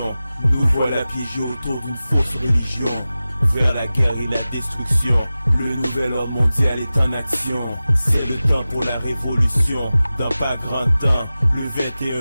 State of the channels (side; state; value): both; inverted; correlation -0.96